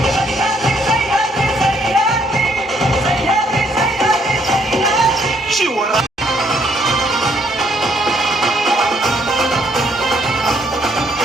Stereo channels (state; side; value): normal; both; correlation 0.68